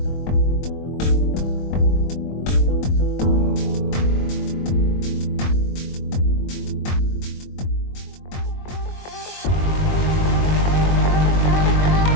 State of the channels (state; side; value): late; right; 22 ms